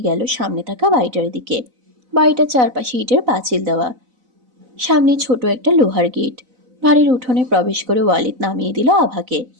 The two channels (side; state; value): left; late; 4.0 ms